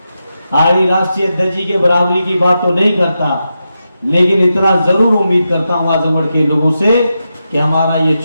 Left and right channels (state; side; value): inverted; both; correlation -0.88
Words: आदरणीय राष्ट्रीय अध्यक्ष जी के बराबरी की बात तो नहीं करता, लेकिन इतना जरूर उम्मीद करता हूं आजमगढ़ के लोगों से कि हमारा ये